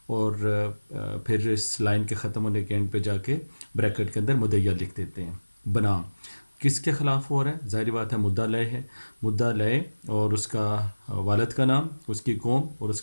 اور پھر اس لائن کے ختم ہونے کے اینڈ پہ جا کے بریکٹ کے اندر مدعیہ لکھ دیتے ہیں. بنا کس کے خلاف ہو رہا ہے؟ ظاہری بات ہے مدعا لے ہے. مدعا لے اور اس کا والد کا نام, اس کی قوم اور اس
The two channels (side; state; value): both; inverted; correlation -1.00